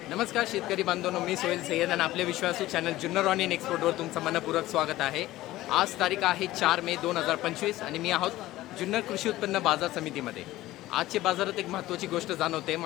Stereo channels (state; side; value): quieter; right; 16.3 dB